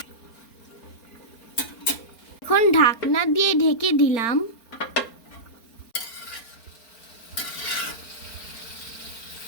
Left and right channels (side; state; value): right; late; 4.3 ms